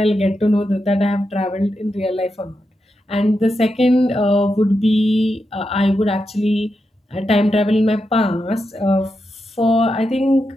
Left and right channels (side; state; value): both; normal; correlation 0.87